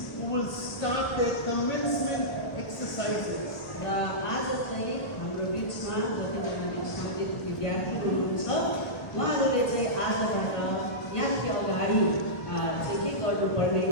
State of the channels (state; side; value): late; right; 1.1 ms